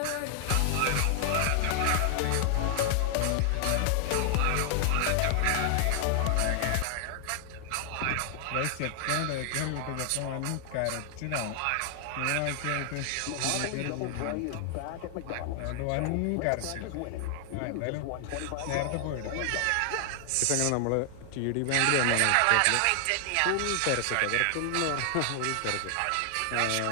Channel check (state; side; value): different; both; correlation 0.00